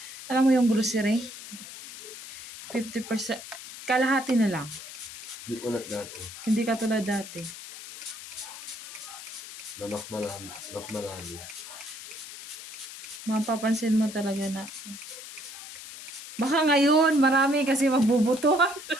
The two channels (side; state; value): left; noise; hiss, 12 dB below the sound